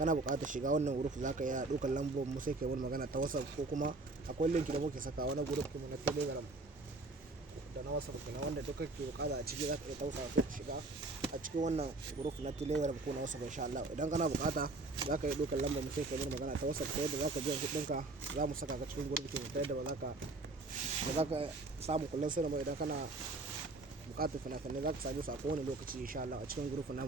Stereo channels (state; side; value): quieter; left; 3.1 dB